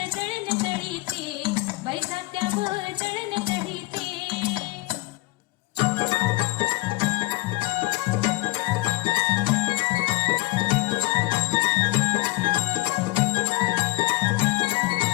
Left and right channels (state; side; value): quieter; right; 20.3 dB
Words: दळण दळीते, बाई जात्यावर दळण दळीते.